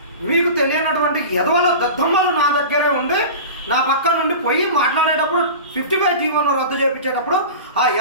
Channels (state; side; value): inverted; both; correlation -0.32